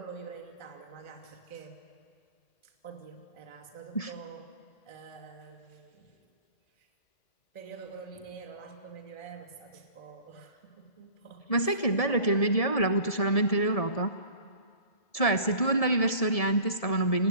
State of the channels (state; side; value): late; right; 1.7 ms